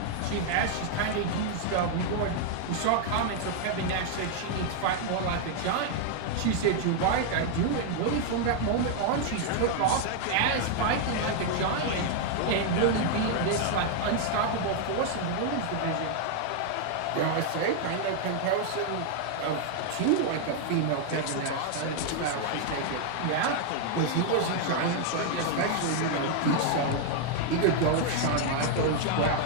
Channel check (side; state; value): both; different; correlation 0.00